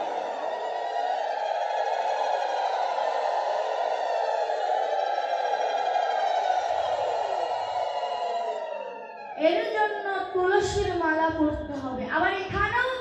এর জন্য তুলসীর মালা পড়তে হবে। আবার এখানেও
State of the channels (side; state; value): both; identical; correlation 1.00